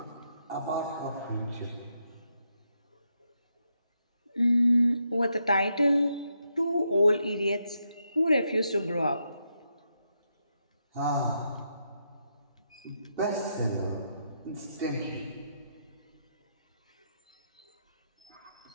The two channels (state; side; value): inverted; both; correlation -0.81